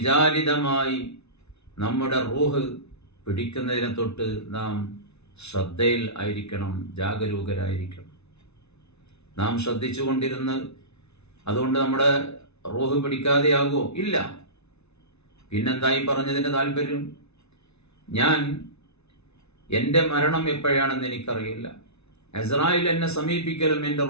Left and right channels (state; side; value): late; right; 0.80 ms